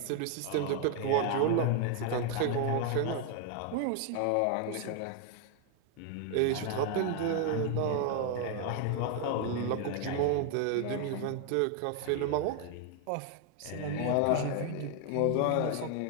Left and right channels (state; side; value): different; both; correlation 0.00